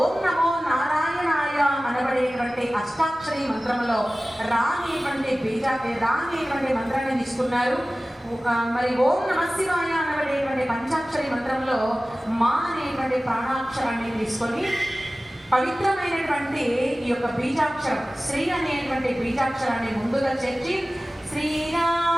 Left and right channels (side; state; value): both; normal; correlation 0.97